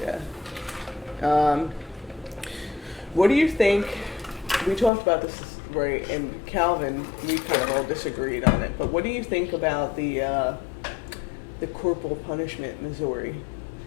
Yeah. What do you think? We talked about this, right? And Calvin, we kind of all disagreed on it. But what do you think about the corporal punishment in Missouri?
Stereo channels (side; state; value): right; drops out; at 4.9 s